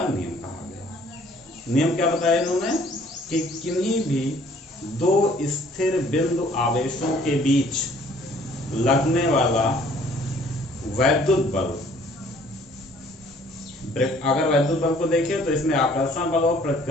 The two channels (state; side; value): normal; both; correlation 0.58